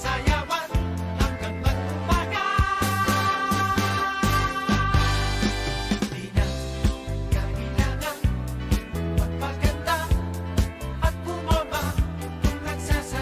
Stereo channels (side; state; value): both; identical; correlation 1.00